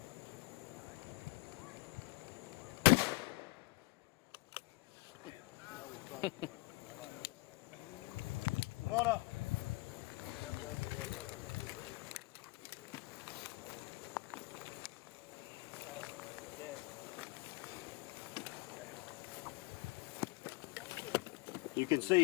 Come on up. You can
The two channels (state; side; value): quieter; right; 22.7 dB